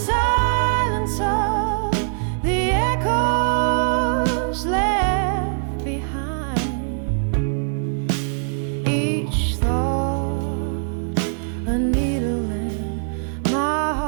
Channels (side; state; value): left; silent; digital silence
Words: of the echoes left behind. Each thought a needle in my